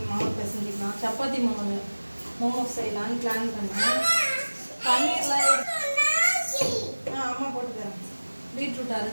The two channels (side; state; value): both; inverted; correlation -1.00